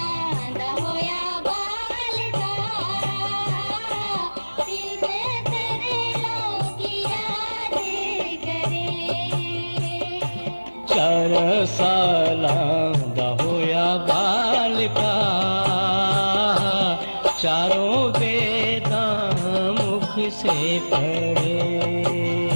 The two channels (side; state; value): both; inverted; correlation -1.00